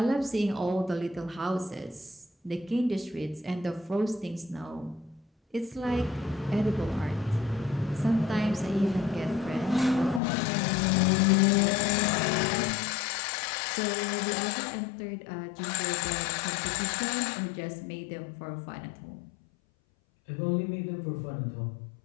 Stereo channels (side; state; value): right; drops out; at 10.2 s